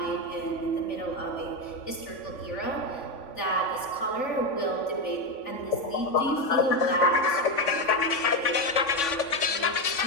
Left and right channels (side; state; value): right; late; 3.5 ms